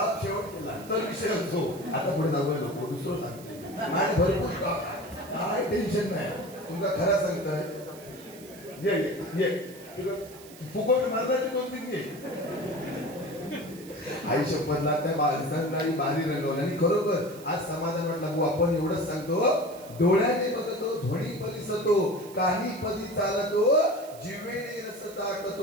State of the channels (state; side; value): noise; right; hiss, 19 dB below the sound